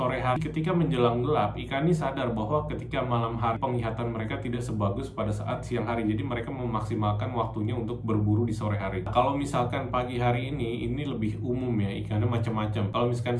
sore hari ketika menjelang gelap, ikan ini sadar bahwa ketika malam hari penglihatan mereka tidak sebagus pada saat siang hari. Jadi mereka memaksimalkan waktunya untuk berburu di sore hari. Kalau misalkan pagi hari ini lebih umum ya, ikannya macam-macam. Kalau misalkan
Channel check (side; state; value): both; identical; correlation 1.00